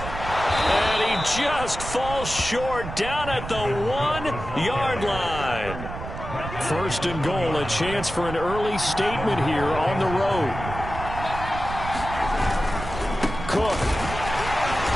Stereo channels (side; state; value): right; noise; rumble, 9 dB below the sound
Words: And he just falls short down at the 1-yard line. 1st and goal, a chance for an early statement here on the road. Cook.